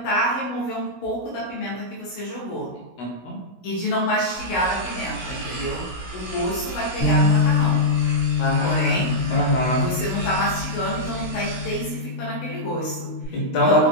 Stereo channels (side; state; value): right; late; 16 ms